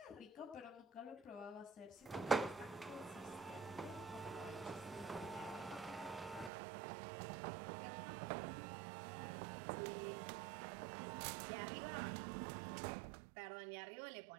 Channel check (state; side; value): drops out; left; at 6.5 s